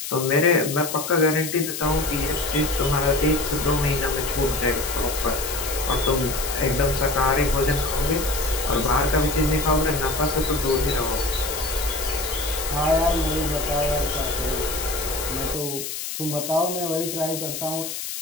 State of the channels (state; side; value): noise; left; hiss, 6 dB below the sound